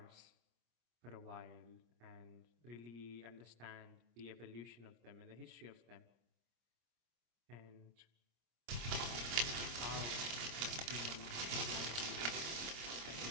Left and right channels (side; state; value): left; late; 26 ms